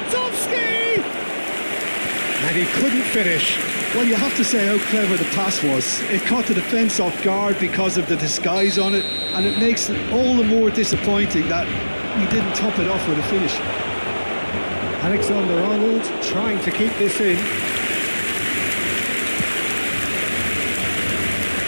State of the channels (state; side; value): inverted; both; correlation -1.00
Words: And he couldn't finish. Well, you have to say how clever the pass was. It caught the defence off guard because of the disguise on it, and it makes it all the more disappointing that he didn't top it off with a finish. Alexander-Arnold trying to keep this in.